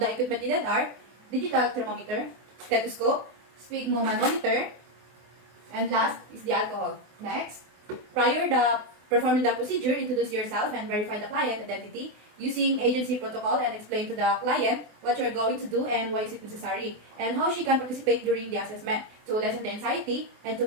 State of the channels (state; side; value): late; left; 24 ms